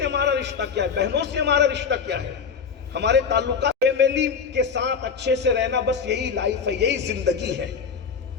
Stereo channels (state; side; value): quieter; right; 6.1 dB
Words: ہمارا رشتہ کیا ہے، بہنوں سے ہمارا رشتہ کیا ہے، ہمارے تعلقات فیملی کے ساتھ اچھے سے رہنا، بس یہی لائف ہے، یہی زندگی ہے۔